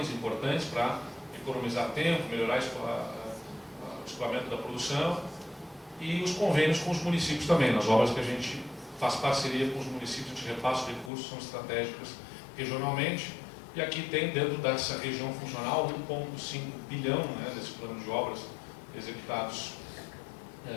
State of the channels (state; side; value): drops out; right; at 11.1 s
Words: importantes para economizar tempo, melhorar o escoamento da produção, e os convênios com os municípios também. Nas obras que a gente faz parceria com os municípios, a gente repassa os recursos, são estratégicas regionalmente, e aqui tem dentro dessa região funcional 1,5 bilhão, né, desse plano de obras executados